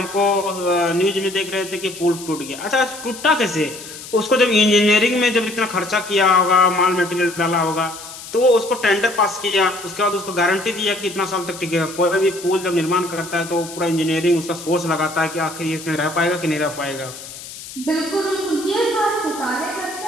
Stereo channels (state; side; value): noise; left; hiss, 13 dB below the sound